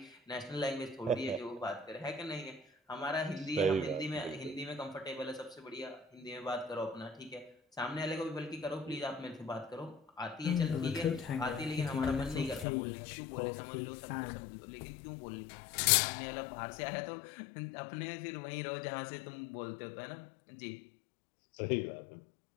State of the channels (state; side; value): drops out; right; at 12.7 s